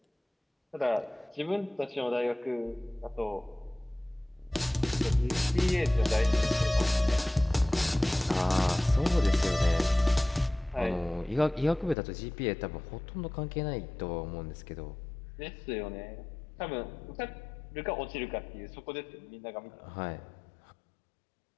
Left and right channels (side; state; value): right; drops out; at 12.0 s